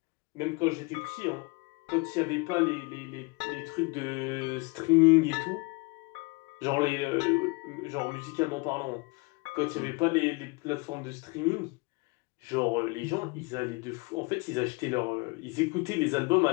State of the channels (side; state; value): right; quieter; 27.8 dB